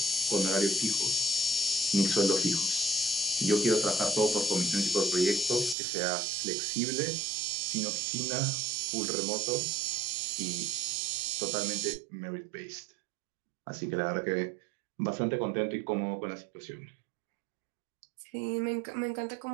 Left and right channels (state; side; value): drops out; left; at 5.8 s